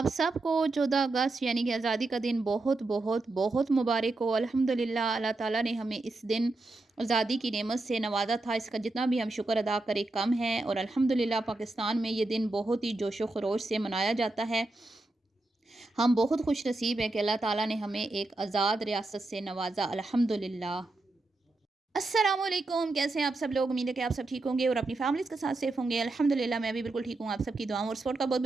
सबको 14 अगस्त यानी कि आज़ादी का दिन बहुत बहुत बहुत मुबारक हो। अल्हम्दुलिल्लाह अल्लाह ताला ने हमें इस दिन आज़ादी की नेमत से नवाजा था। इसका जितना भी हम शुक्र अदा करें कम है। और अल्हम्दुलिल्लाह पाकिस्तान में ये दिन बहुत ही जोशो खरोश से मनाया जाता है। हम बहुत खुश नसीब हैं कि अल्लाह ताला ने हमें एक आज़ाद रियासत से नवाजा, अल्हम्दुलिल्लाह। अस्सलाम वालेकुम, कैसे हैं आप सब लोग? उम्मीद है कि आप सब ठीक होंगे और अपनी फैमिलीज़ के साथ सेफ होंगे। अल्हम्दुलिल्लाह मैं भी बिल्कुल ठीक हूँ। आप सबकी दुआओं और सपोर्ट का बहुत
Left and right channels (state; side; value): quieter; left; 3.1 dB